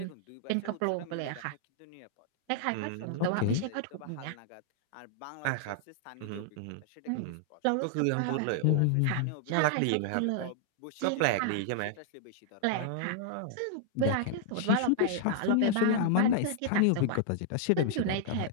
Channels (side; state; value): both; different; correlation -0.01